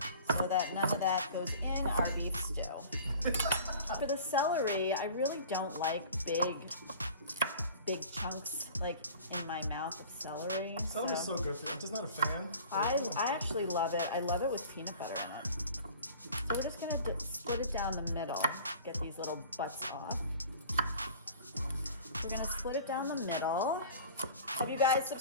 so that none of that goes in our beef stew. For the celery, I really don't like big chunks like in my mouth of celery. Celery's so good for you. I'm just not a fan. I actually love it. I love it with peanut butter in it. So we're just gonna split it down the middle. Get these little butts off. We're gonna split it down the middle. Have you guys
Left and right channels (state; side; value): inverted; both; correlation -0.43